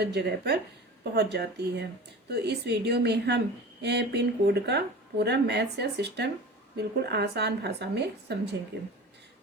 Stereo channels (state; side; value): normal; both; correlation 0.36